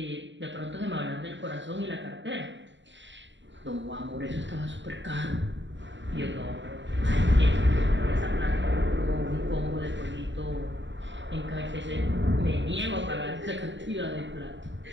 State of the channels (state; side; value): late; left; 0.54 ms